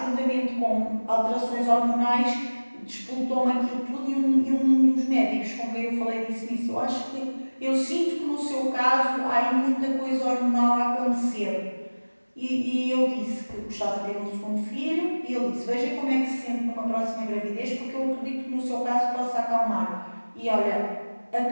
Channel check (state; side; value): inverted; both; correlation -1.00